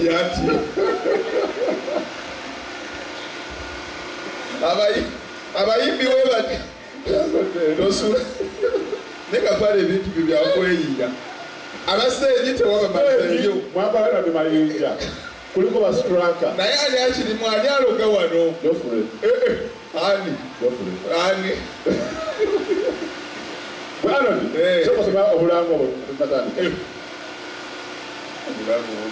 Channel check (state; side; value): identical; both; correlation 1.00